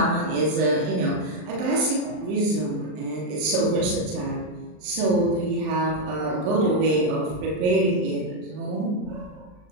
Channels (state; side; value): late; left; 39 ms